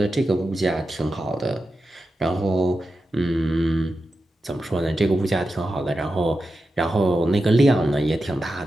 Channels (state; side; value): normal; both; correlation 0.91